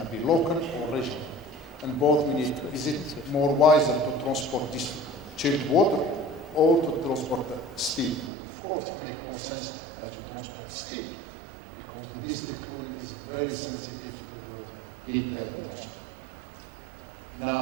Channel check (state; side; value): drops out; left; at 8.3 s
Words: to be local or regional? And both we need. Is it more wiser to transport this chilled water or to transport steam? Of course, it makes more sense that you transport steam, because the district cooling is very sensitive to the heat.